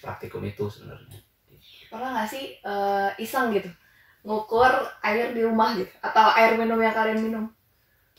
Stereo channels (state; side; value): identical; both; correlation 1.00